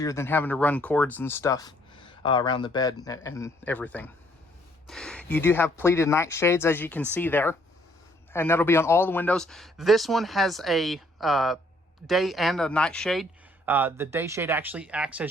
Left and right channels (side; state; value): both; normal; correlation 0.65